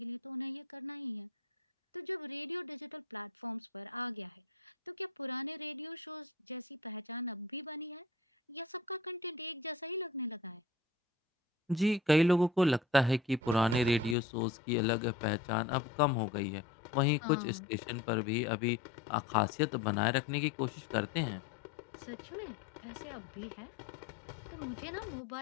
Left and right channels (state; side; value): drops out; right; at 14.2 s